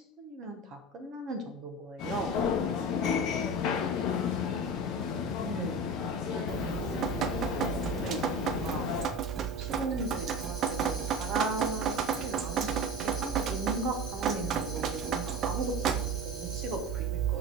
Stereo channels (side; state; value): both; normal; correlation 0.30